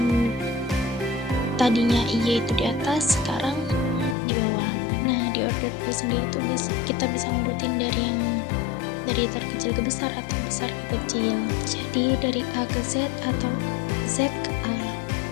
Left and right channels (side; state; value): right; drops out; at 4.2 s